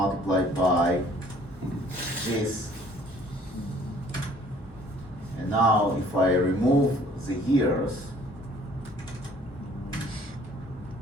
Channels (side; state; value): both; normal; correlation 0.57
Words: by this. And now if I remove the years,